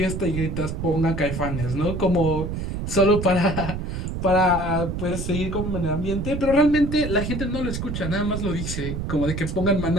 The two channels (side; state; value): right; noise; rumble, 4 dB below the sound